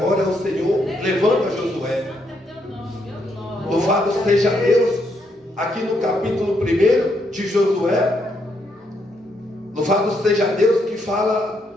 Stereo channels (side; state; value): both; normal; correlation 0.76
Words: o Senhor levanta Josué. Louvado seja Deus, aqui no capítulo 1 de Josué, louvado seja Deus, que fala,